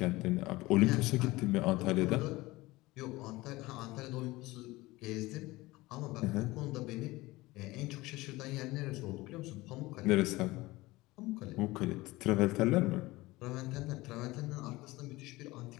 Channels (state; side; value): quieter; right; 20.1 dB